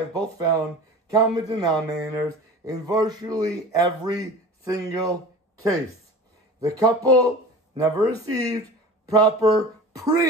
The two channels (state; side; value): normal; both; correlation 0.37